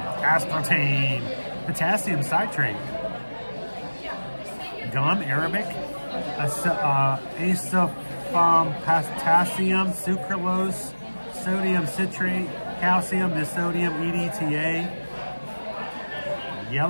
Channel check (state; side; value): inverted; both; correlation -1.00